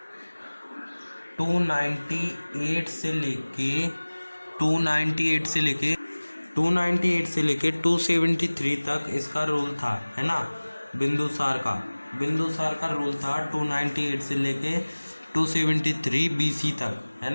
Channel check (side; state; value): both; inverted; correlation -1.00